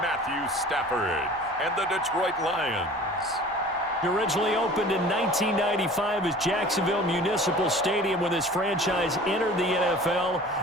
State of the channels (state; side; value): noise; left; hum, 30 dB below the sound